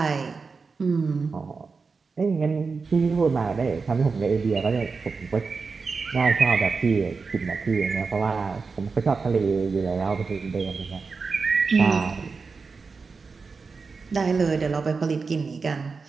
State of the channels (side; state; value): left; quieter; 4.7 dB